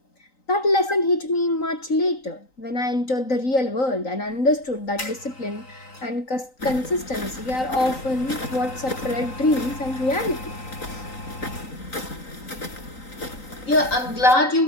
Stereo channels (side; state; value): right; late; 3.9 ms